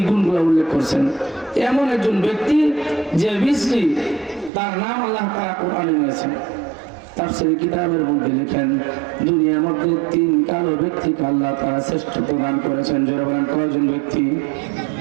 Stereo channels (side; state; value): left; drops out; at 4.5 s